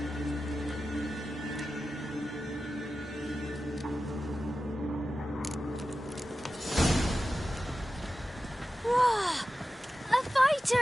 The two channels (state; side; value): normal; both; correlation 0.93